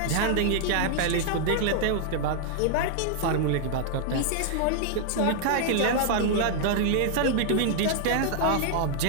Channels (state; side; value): different; both; correlation 0.00